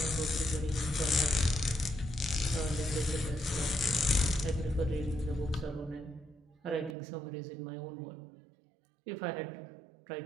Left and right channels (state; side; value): drops out; left; at 7.0 s